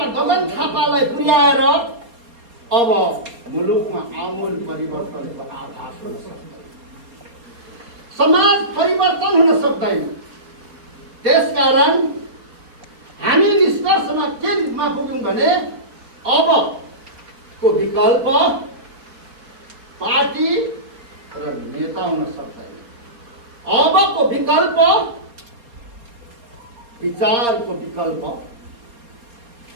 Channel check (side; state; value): left; late; 4.3 ms